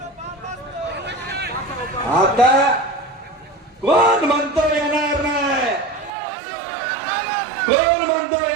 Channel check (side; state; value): left; drops out; at 6.1 s